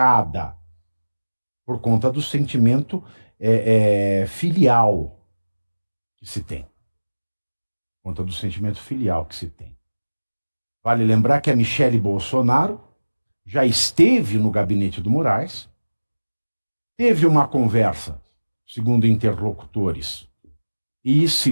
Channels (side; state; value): both; inverted; correlation -1.00